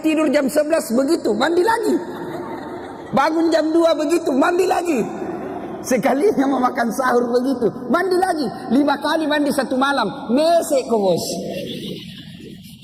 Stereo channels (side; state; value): both; identical; correlation 1.00